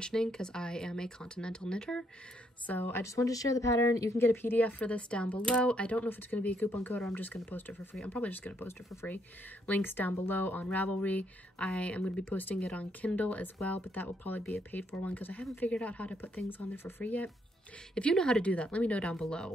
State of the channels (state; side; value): normal; both; correlation 0.73